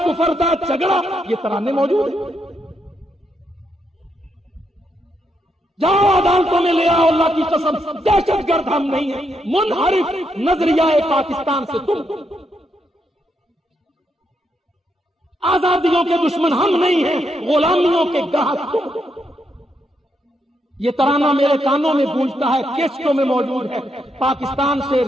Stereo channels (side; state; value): both; normal; correlation 0.80